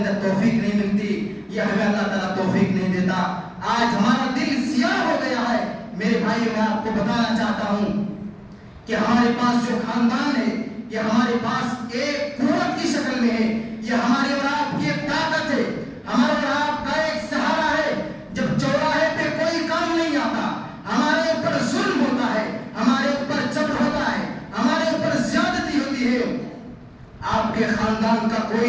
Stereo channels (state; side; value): identical; both; correlation 1.00